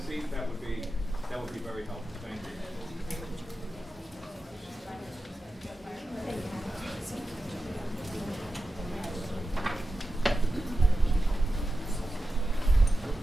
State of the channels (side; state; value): both; normal; correlation 0.92